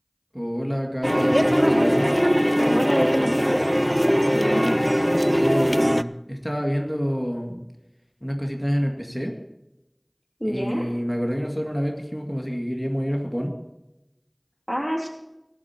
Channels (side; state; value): both; identical; correlation 1.00